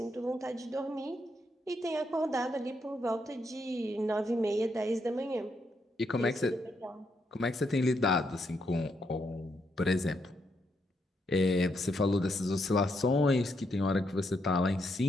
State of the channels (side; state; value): both; normal; correlation 0.79